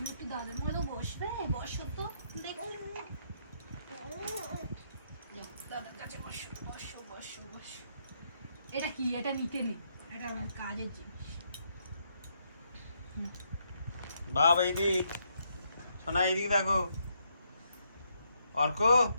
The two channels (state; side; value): inverted; both; correlation -0.76